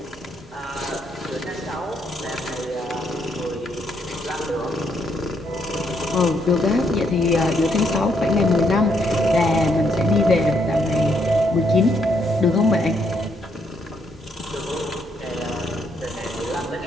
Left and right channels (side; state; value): both; normal; correlation 0.74